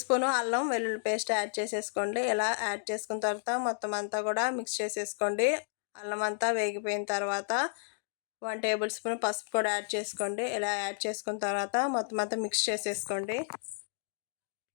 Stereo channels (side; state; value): right; silent; digital silence